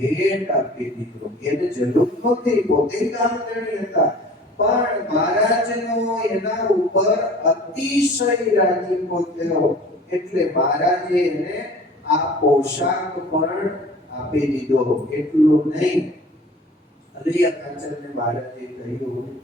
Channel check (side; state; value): both; normal; correlation 0.45